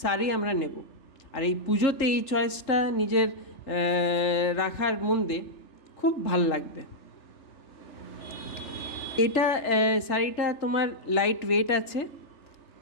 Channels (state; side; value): late; right; 3.4 ms